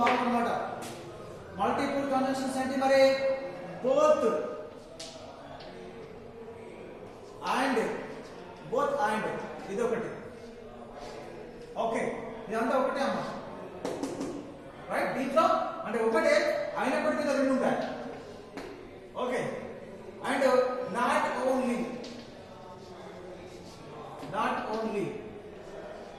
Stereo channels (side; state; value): both; identical; correlation 1.00